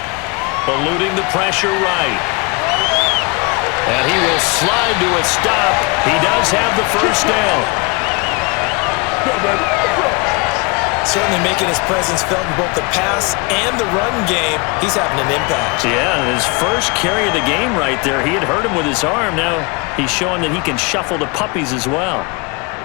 Eluding the pressure right. And he will slide to a stop. He does have the 1st down. Certainly making his presence felt in both the pass and the run game. He's having an impact. Yeah, his first carry of the game right there. He had hurt him with his arm. Now he's showing that he can shuffle the puppies as well.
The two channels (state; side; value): quieter; right; 29.3 dB